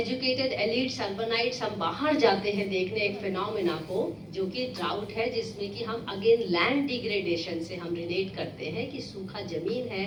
एलिट्स अर्बनाइट्स हम बाहर जाते हैं देखने एक फिनोमेना को जो कि ड्राउट है, जिसमें कि हम अगेन लैंड डिग्रेडेशन से हम रिलेट करते हैं कि सूखा जमीन है,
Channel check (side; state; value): both; identical; correlation 1.00